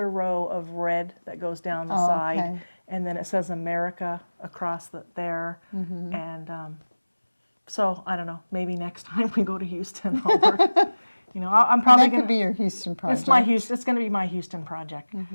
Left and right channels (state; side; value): inverted; both; correlation -1.00